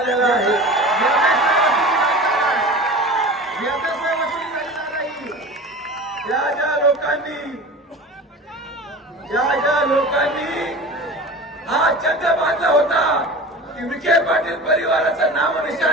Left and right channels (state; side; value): normal; both; correlation 0.35